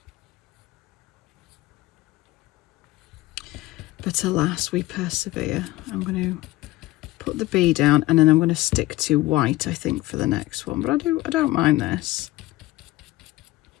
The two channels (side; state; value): right; quieter; 18.1 dB